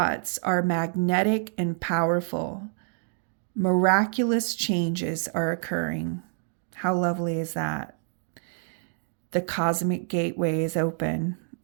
are magnetic and powerful. Miraculous changes are occurring. How lovely is that? The cosmic gateway is open.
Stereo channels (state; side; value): silent; left; 60 dB below the other